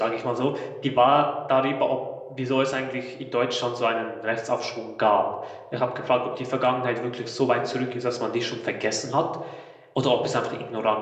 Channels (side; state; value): both; identical; correlation 1.00